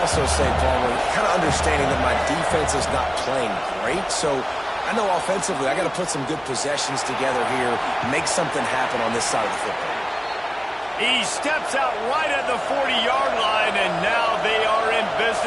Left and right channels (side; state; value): both; identical; correlation 1.00